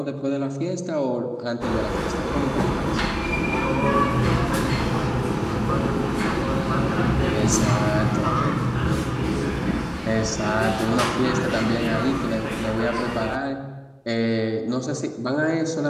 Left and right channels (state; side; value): identical; both; correlation 1.00